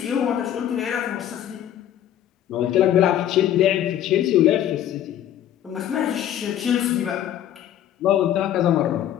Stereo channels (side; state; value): right; quieter; 11.1 dB